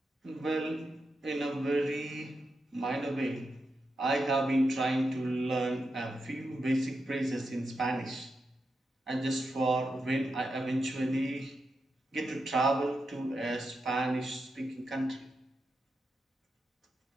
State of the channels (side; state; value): both; normal; correlation 0.87